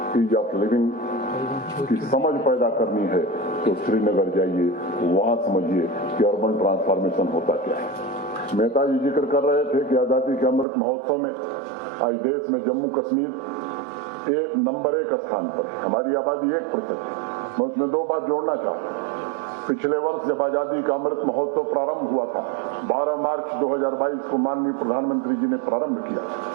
ईज ऑफ लिविंग की समझ पैदा करनी है तो श्रीनगर जाइए, वहां समझिए कि अर्बन ट्रांसफॉर्मेशन होता क्या है। मेहता जी जिक्र कर रहे थे कि आजादी के अमृत महोत्सव में आज देश में जम्मू कश्मीर नंबर 1 स्थान पर है। हमारी आबादी 1% है। मैं उसमें 2 बात जोड़ना चाहता हूँ। पिछले वर्ष जब आजादी का अमृत महोत्सव प्रारंभ हुआ था, 12 मार्च 2022 को माननीय प्रधानमंत्री जी ने प्रारंभ किया,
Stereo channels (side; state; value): left; drops out; at 10.7 s